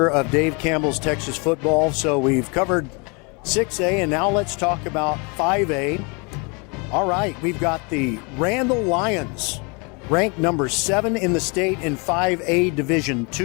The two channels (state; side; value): quieter; right; 31.5 dB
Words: of Dave Campbell's Texas Football. So we've covered 6A, and now let's talk about 5A. All right, we've got the Randall Lions, ranked number 7 in the state in 5A Division